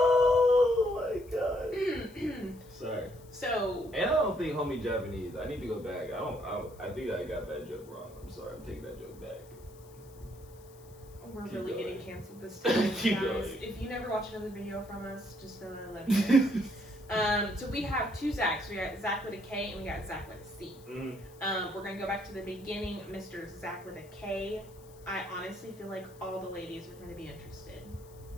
my god. Sorry. So. And I don't think homie Japanese. I need to go back. I think I got that joke wrong. I'm sorry. I'm taking that joke back. We're Keep really going. getting canceled this time, Keep guys. going. If you never watch another video from us, just know that I love you. So we have two Zachs. We got Zach with a K and we got Zach with a C. Mm-hmm. We're gonna go back to the beginning, Mr. Zach with a K. I honestly feel like all the ladies are gonna be interested,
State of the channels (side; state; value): left; noise; hiss, 25 dB below the sound